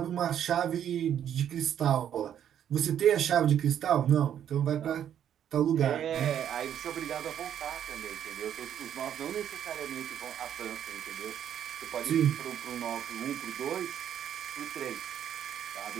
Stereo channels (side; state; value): left; quieter; 9.7 dB